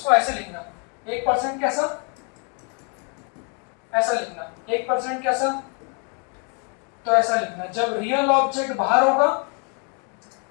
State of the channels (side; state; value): right; quieter; 37.8 dB